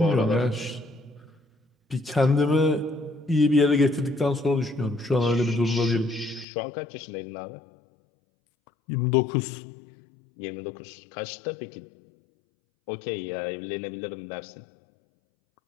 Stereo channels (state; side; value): drops out; right; at 6.5 s